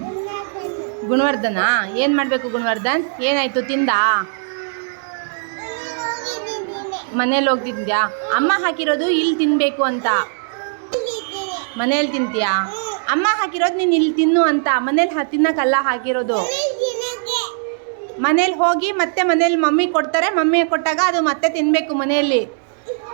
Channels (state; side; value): silent; left; digital silence